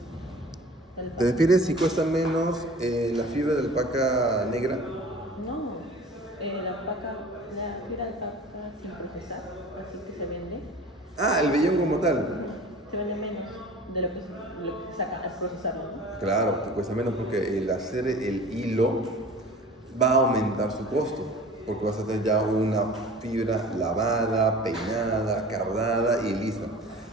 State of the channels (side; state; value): both; normal; correlation 0.42